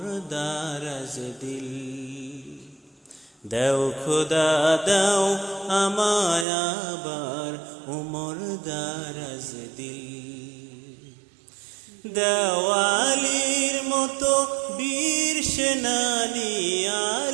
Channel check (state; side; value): drops out; left; at 6.5 s